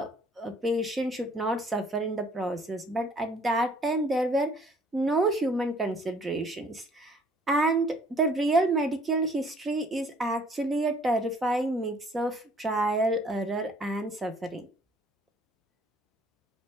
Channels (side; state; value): both; normal; correlation 0.58